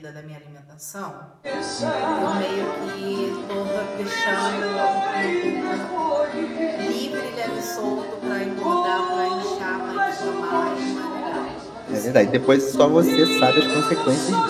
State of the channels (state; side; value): identical; both; correlation 1.00